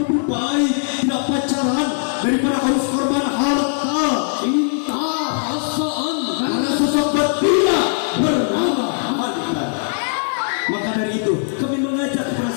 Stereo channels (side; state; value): right; silent; digital silence